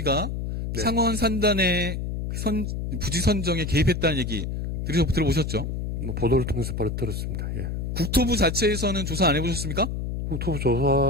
네. 상원 산단의 부지 선정에 개입했다는 얘기 들어보셨죠? 뭐 보도를 통해서 바로 들었습니다. 예. 국토부 자체에서는 조사 안 해보셨습니까? 국토부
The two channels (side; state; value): left; noise; hum, 3 dB below the sound